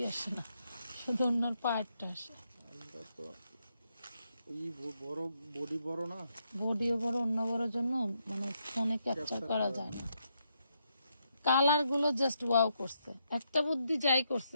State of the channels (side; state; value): both; inverted; correlation -0.79